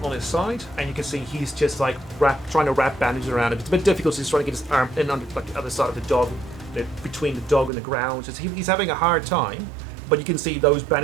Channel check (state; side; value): drops out; left; at 7.7 s